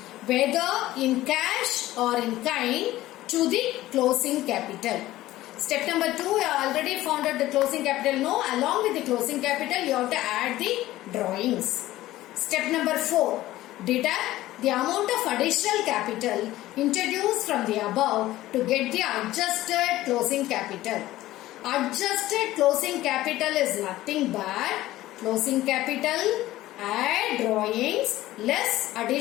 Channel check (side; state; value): right; quieter; 15.8 dB